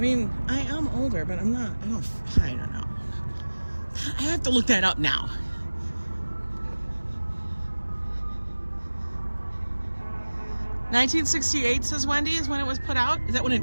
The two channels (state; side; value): inverted; both; correlation -1.00